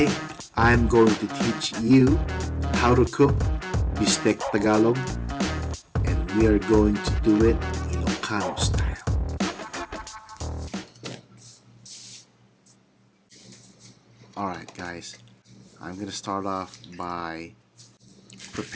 I'm going to teach you how to cook Bistek Tagalog, and we are going to do it Ilocano style. Alright guys, I'm gonna start off by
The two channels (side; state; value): both; identical; correlation 1.00